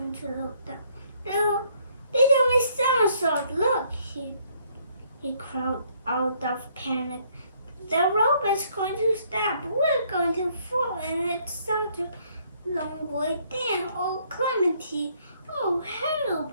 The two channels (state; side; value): inverted; both; correlation -0.66